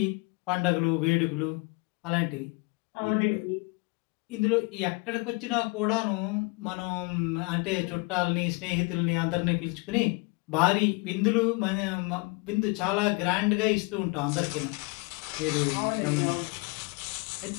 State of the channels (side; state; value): right; quieter; 28.5 dB